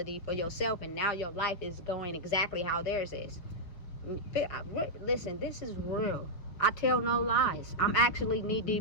for yourself. And now your life is going exactly how theirs is. Listen, this is real. I tell no lies. I'm actually knee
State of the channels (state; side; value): late; right; 5.5 ms